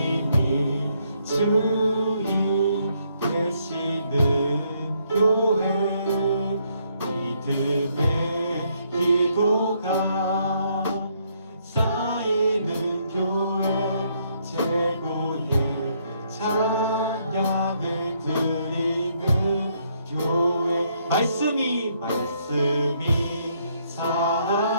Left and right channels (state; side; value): inverted; both; correlation -0.72